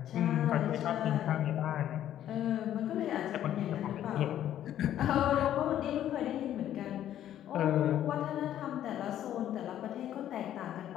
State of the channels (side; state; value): right; quieter; 11.5 dB